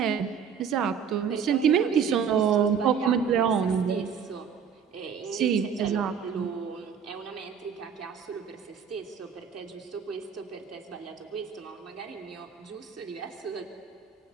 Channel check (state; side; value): quieter; left; 7.1 dB